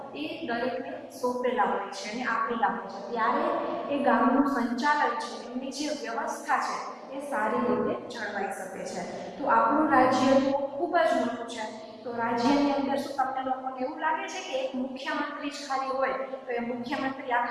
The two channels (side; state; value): both; identical; correlation 1.00